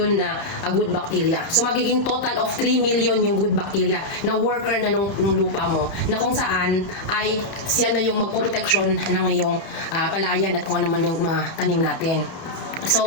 na good bacteria. So magiging total of 3 million yung good bacteria na worker na nung lupa mo, na kung saan ay siya na yung magproteksyon ng iyong palayan at kung ano man yung mga tanim natin.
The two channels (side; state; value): right; late; 31 ms